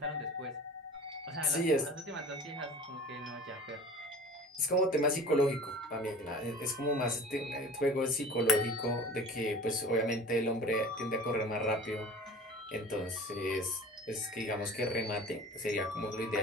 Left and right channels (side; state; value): both; normal; correlation 0.41